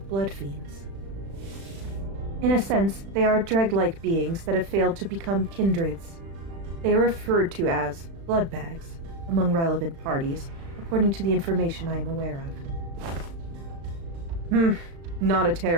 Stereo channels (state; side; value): late; left; 36 ms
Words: blood fiends. In a sense, they are dreg-like beings that have failed to become kindreds. They are referred to as blood bags among relevant parties, according to the information I am aware of. Not a